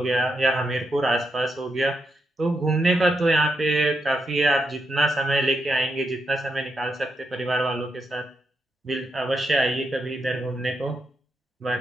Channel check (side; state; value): both; normal; correlation 0.83